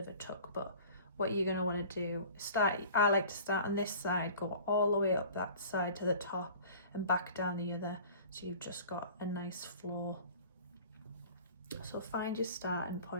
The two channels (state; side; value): inverted; both; correlation -0.44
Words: a tuck. But what you're going to want to do, I like to start on this side, go all the way up that side to the top and back down the other, so you've just got a nice flow. So find your starting